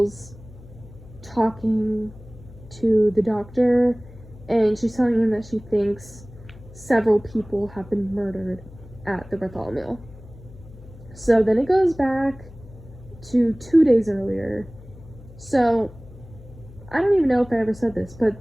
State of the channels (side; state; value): left; noise; hum, 19 dB below the sound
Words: talking to the doctor, and she's telling him that she thinks several people have been murdered at the Bartholomew. So then it goes back to 2 days earlier. So I don't even know if I ever said this,